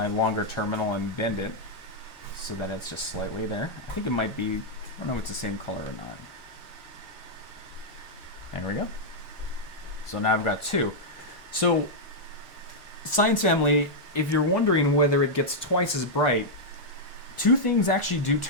longer terminal and bend it so that it's just slightly there. I think it might be, I don't know if it's the same color or not. There we go. So now I've got two. So, Science Family, if you're wondering whether it gets twice as bright, two things actually do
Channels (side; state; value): both; normal; correlation -0.05